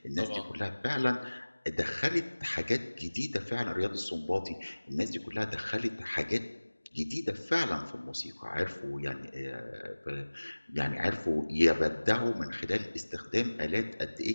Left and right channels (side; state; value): both; inverted; correlation -1.00